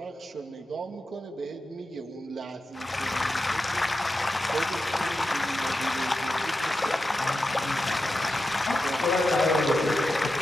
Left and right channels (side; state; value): both; normal; correlation 0.90